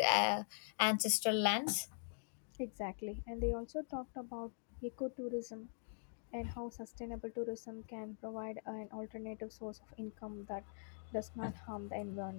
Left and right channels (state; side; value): silent; right; digital silence